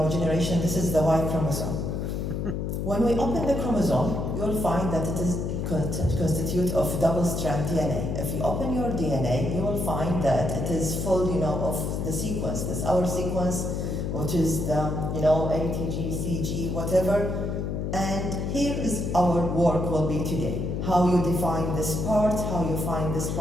generation. This is the Y chromosome. When we open the chromosome, you'll find that it is constituted of double-strand DNA. If you open your DNA, you will find that it is full, of the sequence. This is our sequence, which is the, A, T, G, C, G, whatever. And here is our work will be today. How you define this part, how you find this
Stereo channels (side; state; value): left; noise; hum, 2 dB below the sound